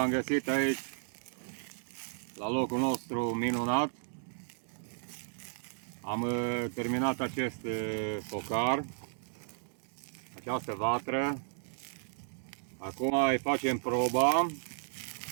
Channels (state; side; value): silent; left; digital silence